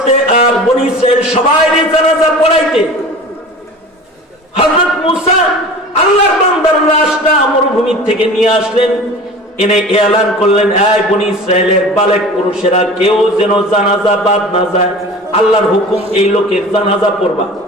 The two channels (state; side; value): normal; both; correlation 0.39